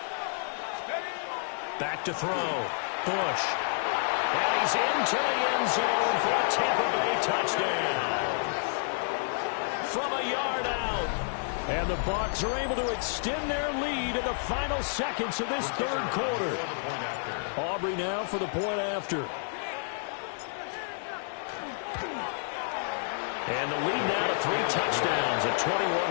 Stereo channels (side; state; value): right; silent; digital silence